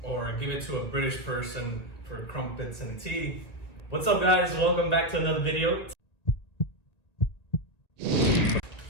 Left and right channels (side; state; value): right; late; 1.9 ms